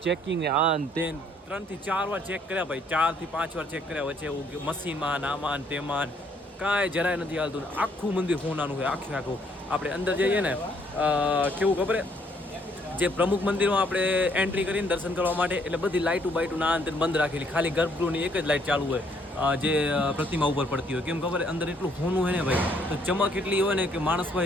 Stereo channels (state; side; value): normal; both; correlation 0.66